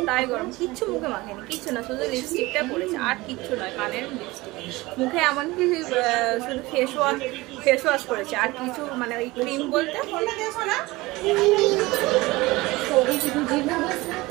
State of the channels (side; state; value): left; quieter; 20.9 dB